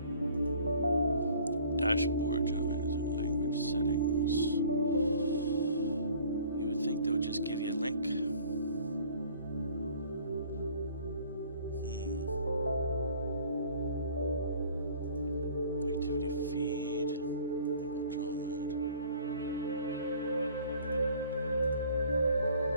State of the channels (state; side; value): inverted; both; correlation -0.52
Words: Dashboard, language settings. You would think they would just give you a link. Activity feed. Enable draw mode.